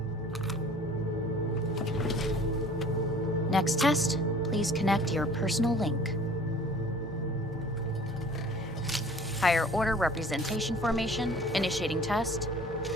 Next test, please connect your personal link. Higher order representation formation, initiating test.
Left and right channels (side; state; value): both; normal; correlation 0.49